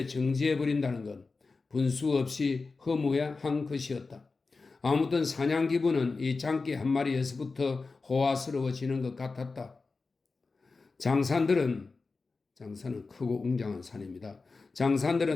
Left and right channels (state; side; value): quieter; right; 4.1 dB